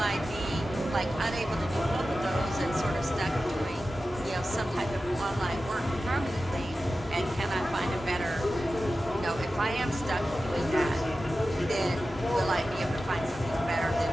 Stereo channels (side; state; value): both; normal; correlation 0.94